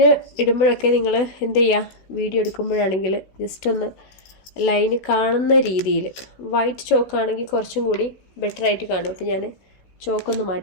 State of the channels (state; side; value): late; right; 16 ms